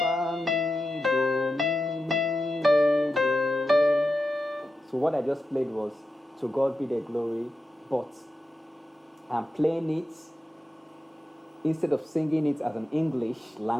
So what I just played was To God Be the Glory, but I'm playing it instead of singing it as an English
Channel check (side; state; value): both; normal; correlation 0.89